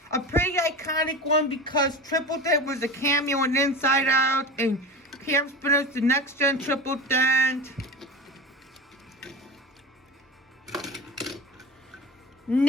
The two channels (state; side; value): normal; both; correlation 0.29